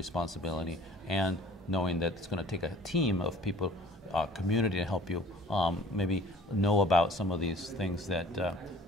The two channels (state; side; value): normal; both; correlation 0.50